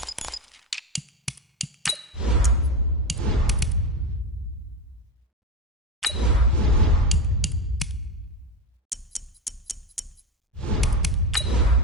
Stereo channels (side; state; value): both; normal; correlation 0.18